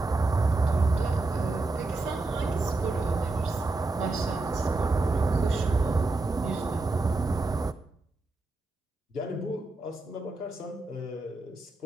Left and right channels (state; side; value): quieter; left; 3.2 dB